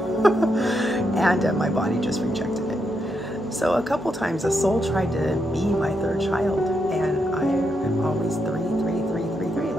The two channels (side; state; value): both; normal; correlation 0.81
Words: And my body just rejected it. So a couple times a soul tried to be my third child, and I am always 3, 3, 3, 3, 3.